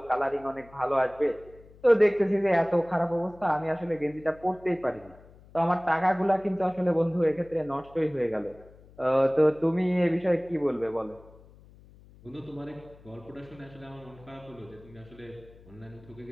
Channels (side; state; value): left; noise; hum, 24 dB below the sound